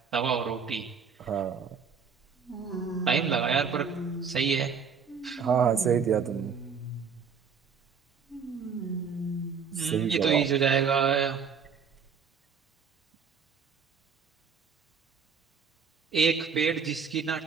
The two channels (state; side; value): quieter; left; 6.2 dB